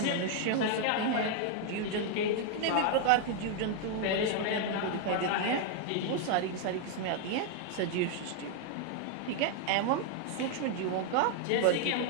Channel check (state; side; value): different; both; correlation 0.00